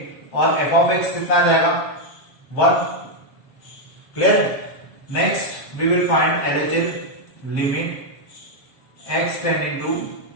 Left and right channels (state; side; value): late; right; 7.6 ms